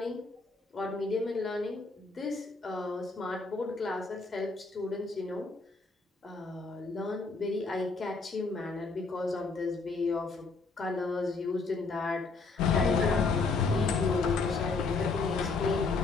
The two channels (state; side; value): quieter; right; 4.0 dB